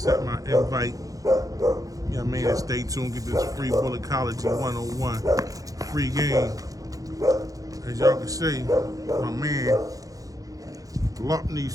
my invite. You know what I mean? And stay tuned. Get this free Bulletology 101 free game. As y'all can see, my man Luckney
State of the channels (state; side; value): late; left; 0.17 ms